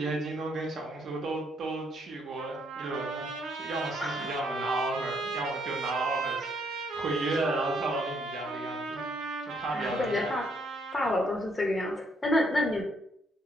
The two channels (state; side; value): normal; both; correlation 0.70